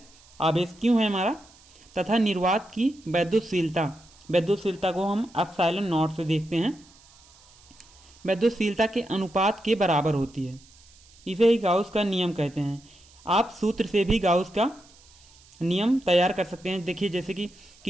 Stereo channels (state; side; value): noise; right; hiss, 27 dB below the sound